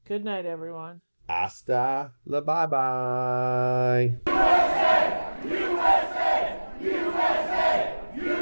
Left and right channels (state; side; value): inverted; both; correlation -1.00